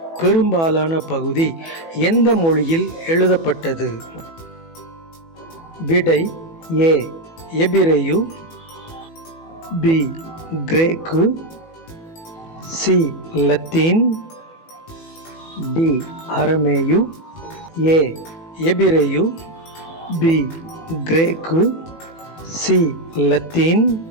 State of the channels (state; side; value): late; right; 18 ms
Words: பெரும்பாலான பகுதி எந்த மொழியில் எழுதப்பட்டது? விடை ஏ எபிரேயு, பி கிரேக்கு, சி லத்தீன், டி அரமேயு. ஏ எபிரேயு, பி கிரேக்கு, சி லத்தீன்,